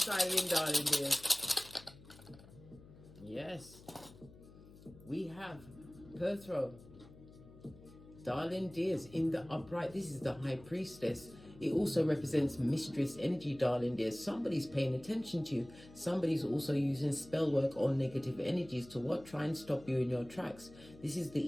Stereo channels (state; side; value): noise; left; hum, 20 dB below the sound